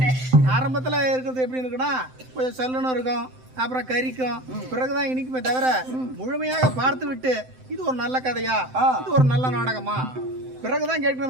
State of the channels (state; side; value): late; left; 7.8 ms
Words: ஆரம்பத்துல இருக்கிறது எப்படி இருக்குன்னா கொஞ்சம் சல்லுன்னு இருக்கும், அப்புறம் கறிக்கும், பிறகுதான் இனிக்குமே தவிர முழுமையாக பார்த்து விட்டு இது ஒரு நல்ல கதையா, இது ஒரு நல்ல நாடகமா பிறகுதான்